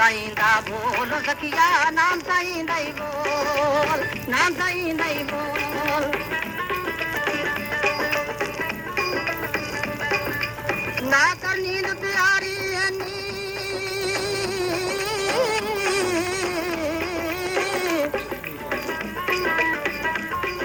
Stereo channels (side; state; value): both; identical; correlation 1.00